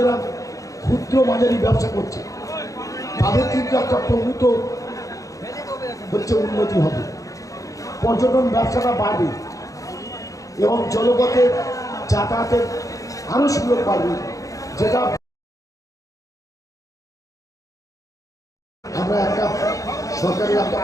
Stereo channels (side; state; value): right; late; 0.16 ms